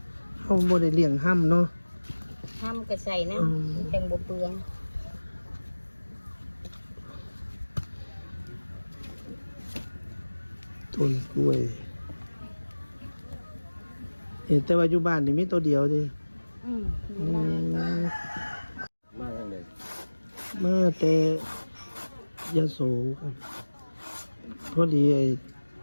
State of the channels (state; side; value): inverted; both; correlation -1.00